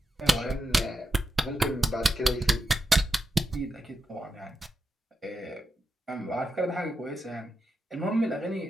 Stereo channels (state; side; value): normal; both; correlation 0.87